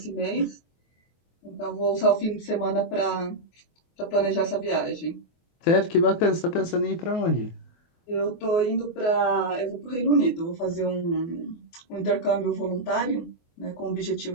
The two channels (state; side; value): late; right; 24 ms